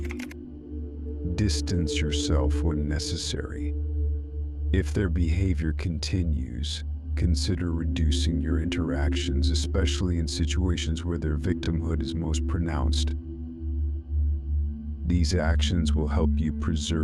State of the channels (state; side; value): identical; both; correlation 1.00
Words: Distance yourself when necessary. If their behavior continues, consider reducing your interactions, especially in situations where their victimhood is most pronounced. These actions will help you